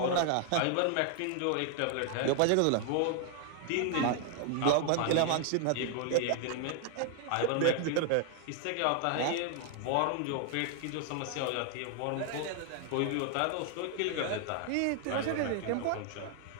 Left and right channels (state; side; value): different; both; correlation 0.00